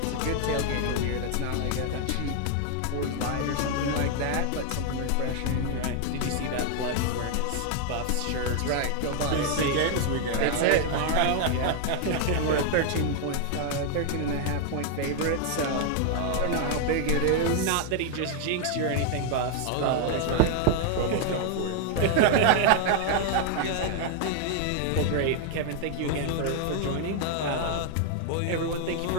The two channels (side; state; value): both; different; correlation 0.00